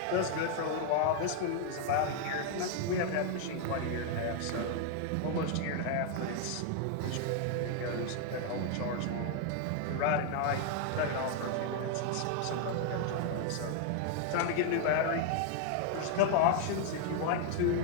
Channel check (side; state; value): both; different; correlation 0.00